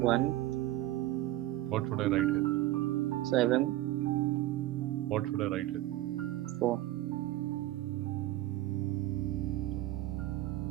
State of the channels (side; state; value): left; quieter; 15.7 dB